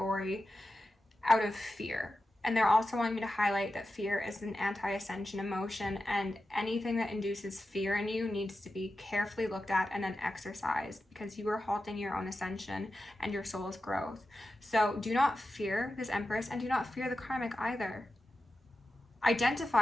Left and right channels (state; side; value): normal; both; correlation 0.92